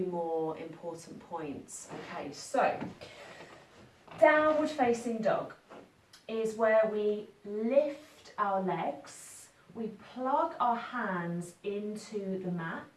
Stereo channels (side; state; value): both; identical; correlation 1.00